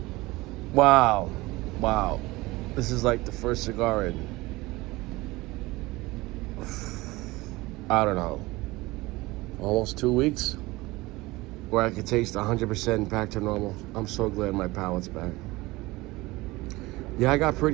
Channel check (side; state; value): left; quieter; 20.8 dB